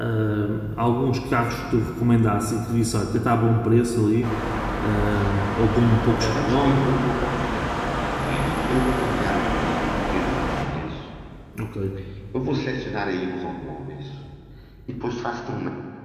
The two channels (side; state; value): both; identical; correlation 1.00